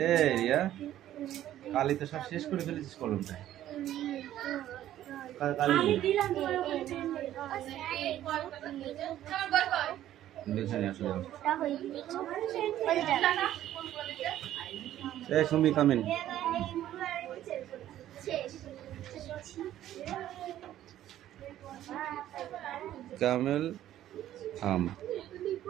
রিয়া কালি তো সব শেষ করে ফেলেছিস কলমটা। কালি সুমি কামিন। camel,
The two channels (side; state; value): left; quieter; 12.6 dB